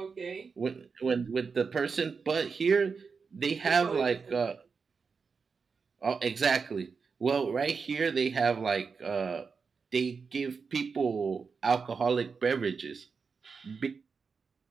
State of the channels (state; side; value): quieter; left; 5.3 dB